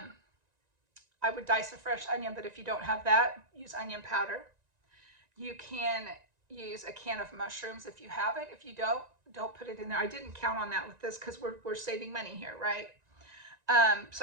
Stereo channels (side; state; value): left; late; 1.9 ms